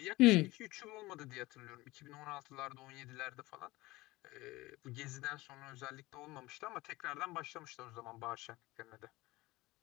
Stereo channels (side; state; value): right; quieter; 20.1 dB